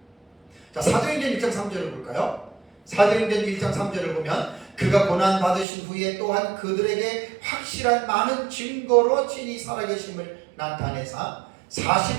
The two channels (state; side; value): drops out; left; at 5.7 s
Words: 자, 사도행전 1장 3절을 볼까요? 사도행전 1장 3절을 보면 그가 고난받으신 후에 또한 그들에게 확실한 많은 증거로 친히 살아계심을 나타내사